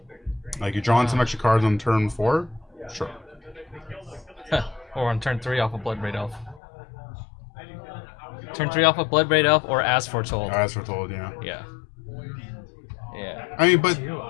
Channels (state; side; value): drops out; right; at 6.6 s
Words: Like you're drawing some extra cards on turn 4. Sure. Huh. Or on turn 3 off of Bloodbraid Elf. Turn 3 off of Bloodbraid Elf or As Foretold. As foretold, yeah. Yeah. Yeah. I mean, but